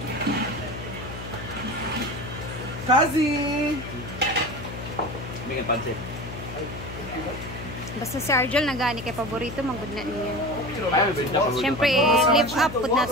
Kazi! May nga pansit. Basta si Arjel nagani kay paborito manggod na niya. Ay, benta pa. Siyempre, live up pud na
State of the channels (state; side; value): noise; left; hum, 10 dB below the sound